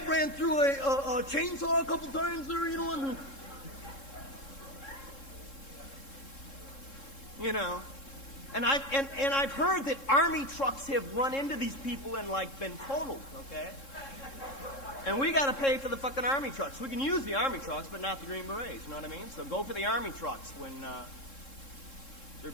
ran through a chainsaw a couple times there, you know? And, you know. And I've heard that army trucks have run into these people and like been totaled, okay? And we got to pay for the fucking army trucks. We can use the army trucks, but not the Green Berets. You know what I mean? So go for the army trucks when they're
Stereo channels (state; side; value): late; right; 3.7 ms